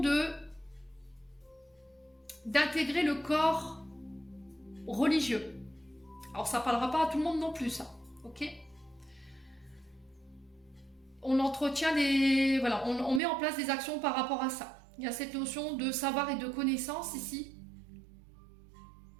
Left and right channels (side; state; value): left; drops out; at 13.2 s